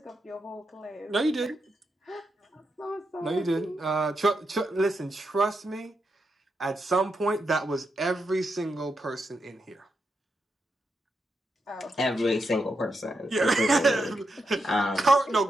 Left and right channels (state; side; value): normal; both; correlation 0.84